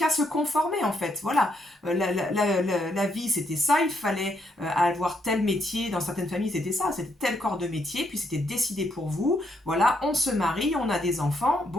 se conformer en fait. Voilà, la vie c'était ça. Il fallait avoir tel métier. Dans certaines familles c'était ça. C'était tel corps de métier. Puis c'était décidé pour vous. Voilà, on se marie, on a des enfants.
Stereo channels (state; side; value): normal; both; correlation 0.75